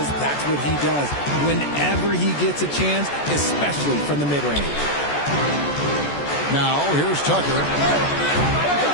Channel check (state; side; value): late; right; 14 ms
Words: that's what he does whenever he gets a chance, especially from the mid-range. Now, here's Tucker.